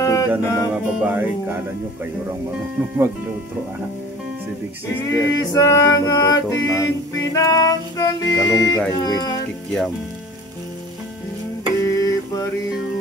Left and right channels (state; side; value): normal; both; correlation 0.44